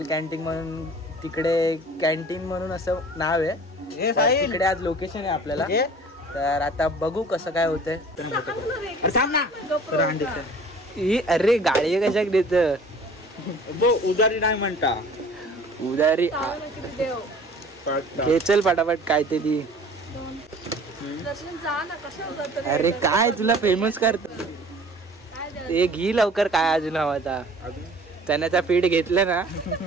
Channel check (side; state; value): both; normal; correlation 0.48